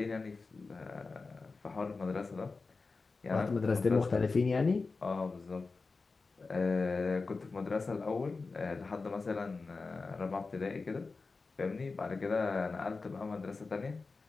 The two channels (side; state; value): right; quieter; 4.1 dB